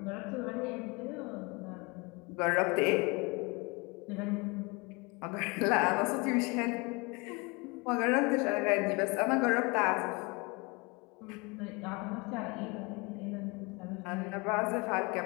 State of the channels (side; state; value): right; quieter; 27.9 dB